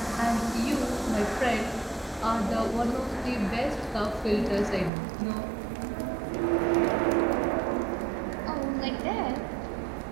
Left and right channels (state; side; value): drops out; left; at 4.9 s